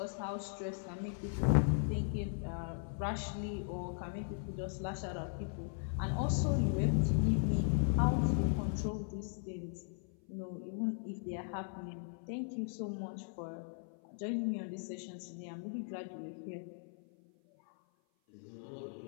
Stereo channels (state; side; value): silent; right; 52 dB below the other